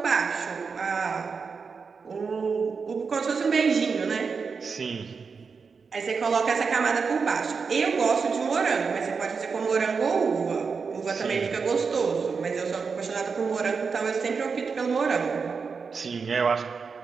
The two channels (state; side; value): quieter; left; 5.3 dB